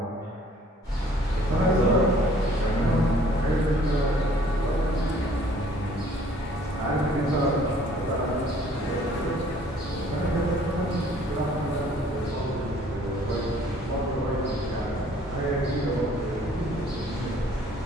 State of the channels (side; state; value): both; normal; correlation 0.57